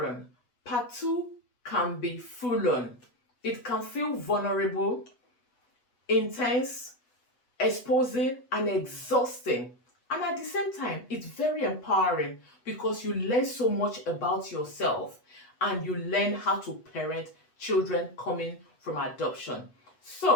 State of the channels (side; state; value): right; late; 8.1 ms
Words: on, part 2 can be full on. It can feel vulnerable, intense, exposing, and exhausting. And at the same time, it's very empowering because you learn so much about yourself and you learn how to parent children coming from adoption.